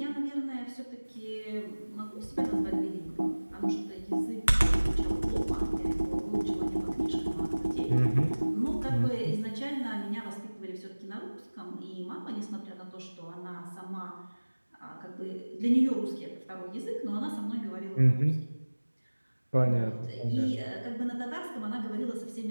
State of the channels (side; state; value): both; inverted; correlation -1.00